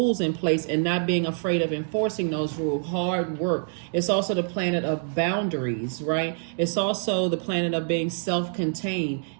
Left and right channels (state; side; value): silent; left; digital silence